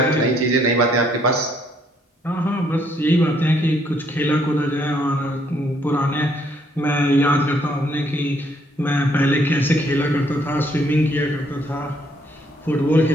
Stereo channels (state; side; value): normal; both; correlation 0.68